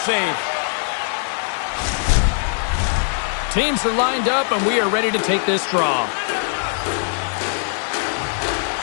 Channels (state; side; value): silent; right; 65 dB below the other